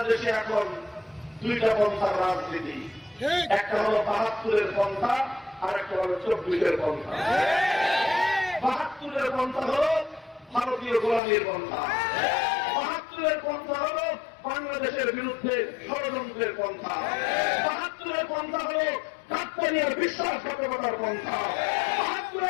এখন দুইটা পন্থার রাজনীতি, একটা হলো ৭২-এর পন্থা আর একটা হলো ২৪-এর পন্থা। ৭২-এর পন্থা হলো ভারতীয় গোলামীর পন্থা, ৭২-এর পন্থা হলো বাংলাদেশের বিরুদ্ধে ষড়যন্ত্রের পন্থা, ৭২-এর পন্থা হলো কাকতালীয় বিশ্বাসঘাতকতার পন্থা,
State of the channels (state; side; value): drops out; right; at 11.2 s